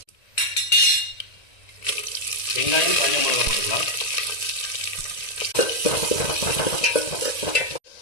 வெங்காயம், காஞ்ச மிளகா போட்டுக்கலாம்.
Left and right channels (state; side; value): late; right; 1.9 ms